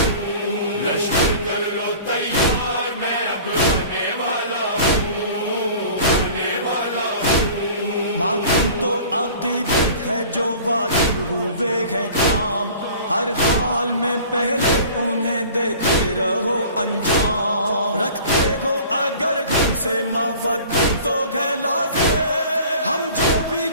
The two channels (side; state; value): both; inverted; correlation -0.44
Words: لشکر کر لو تیار، میں اب آنے والا ہوں، آنے والا ہوں. ماتم تو عقیدت ہے جو واجب ہوئے ہیں کام، ہر حال میں پہلے انہیں دیتے رہو انجام. رکھتے ہو اگر گھر سے مودت تو ہے لازم، ہم جو بھی